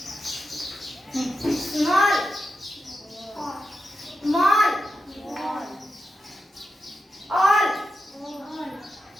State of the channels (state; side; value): normal; both; correlation 0.88